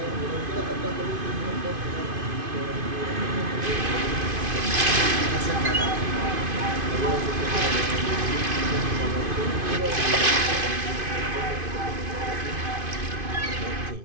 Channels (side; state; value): left; late; 2.5 ms